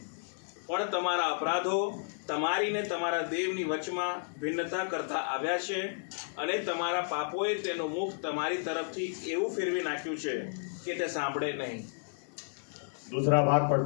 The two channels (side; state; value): right; silent; 56 dB below the other